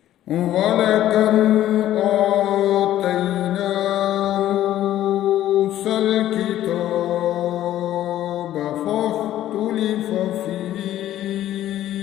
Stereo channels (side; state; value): right; quieter; 12.9 dB